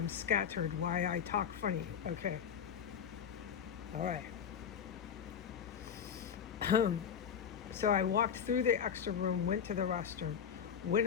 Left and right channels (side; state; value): right; quieter; 7.7 dB